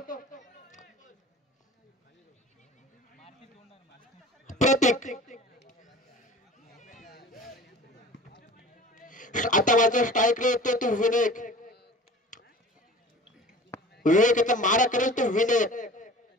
प्रतीक आता माझा स्ट्राईक येतो तो विवेक याचा मारा करेल तो विनायक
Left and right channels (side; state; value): both; normal; correlation 0.42